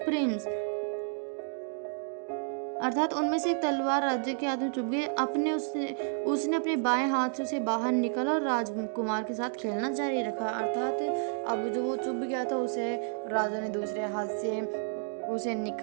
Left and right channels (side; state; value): left; silent; digital silence